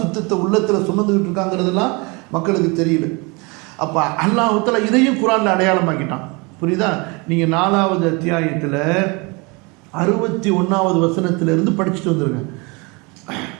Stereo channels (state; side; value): quieter; left; 28.2 dB